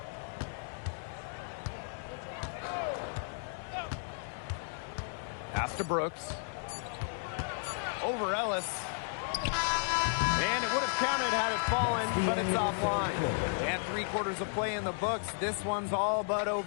Pass to Brooks. Over Ellis. And it would have counted had it fallen, but it's offline. And 3/4 of play in the books. This one's all but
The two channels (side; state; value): right; silent; digital silence